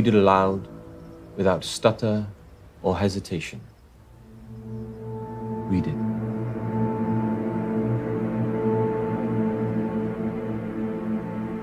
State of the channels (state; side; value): identical; both; correlation 1.00